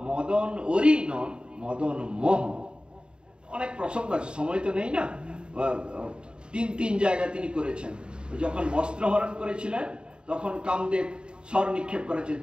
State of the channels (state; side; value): late; left; 0.051 ms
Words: মদন ওরি নন, মদন মোহ। অনেক প্রসঙ্গ আছে, সময় তো নেই না। তিন জায়গায় তিনি করেছেন। যখন বস্ত্র হরণ করেছিলেন তখন কামদেব স্বর নিক্ষেপ করেছেন,